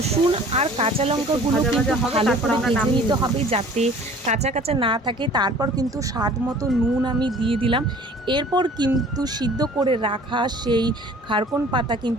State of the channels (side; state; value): both; normal; correlation 0.49